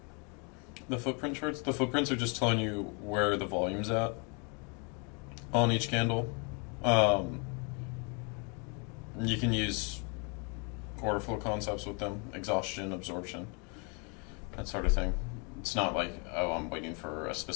The footprint charts? The footprints are just telling you where the volume's at on each candle. You can use order flow concepts with them, exhaustion, absorption, that sort of thing. It's not like, oh, I'm waiting for a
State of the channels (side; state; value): right; quieter; 34.3 dB